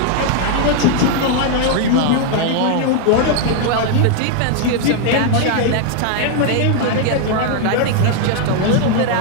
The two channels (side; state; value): both; different; correlation 0.00